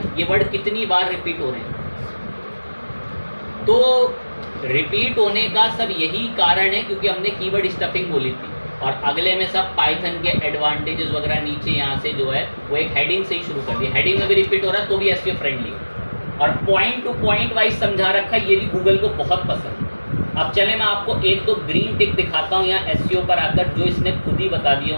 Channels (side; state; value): both; inverted; correlation -1.00